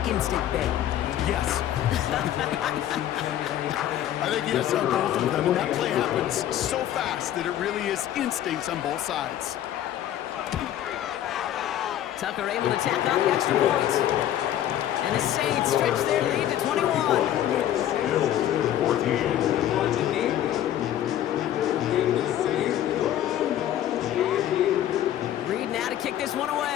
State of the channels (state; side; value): quieter; right; 11.7 dB